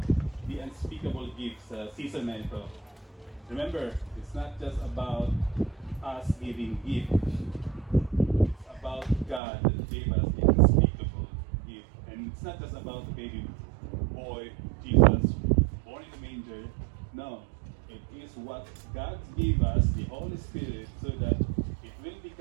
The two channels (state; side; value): drops out; left; at 9.4 s